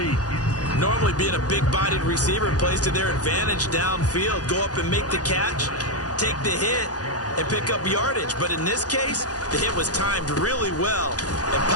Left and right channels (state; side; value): late; right; 0.68 ms